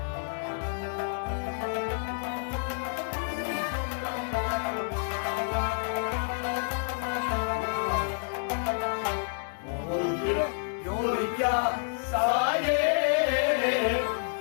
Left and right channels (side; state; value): right; silent; digital silence